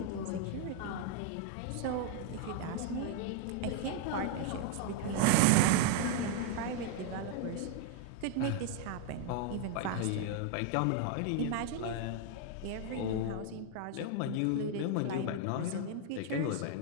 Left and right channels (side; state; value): both; different; correlation 0.00